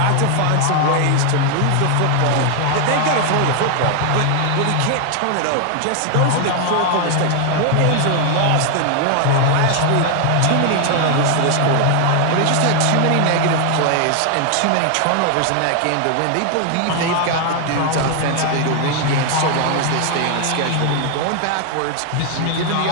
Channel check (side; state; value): both; different; correlation 0.00